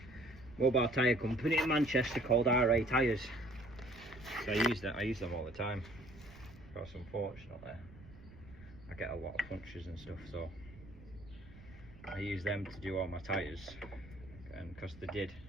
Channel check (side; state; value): right; noise; rumble, 19 dB below the sound